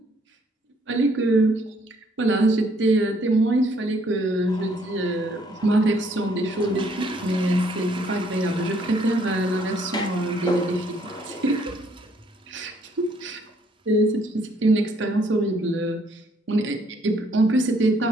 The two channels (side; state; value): both; normal; correlation 0.66